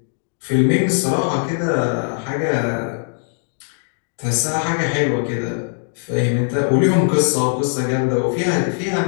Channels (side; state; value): right; silent; 55 dB below the other